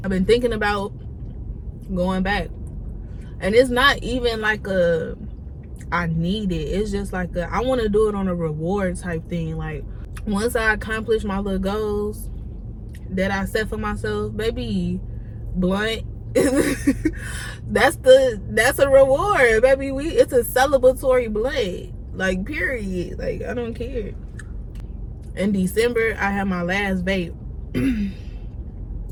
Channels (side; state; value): both; identical; correlation 1.00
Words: I've been thinking about going back, and it's not even like a I need it. It's just like I want to do it on a reward type thing. Like, once I accomplish my little goals that I set for myself, baby, blunt. that's a reward, baby. It's a celebratory blunt. Like, period. Like, I don't care. In December, I had my last vape. And